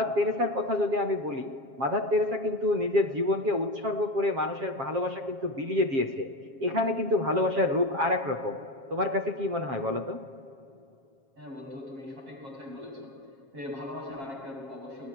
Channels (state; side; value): late; left; 7.4 ms